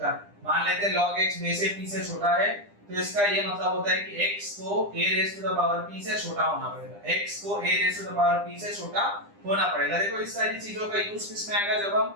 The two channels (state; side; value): late; left; 9.9 ms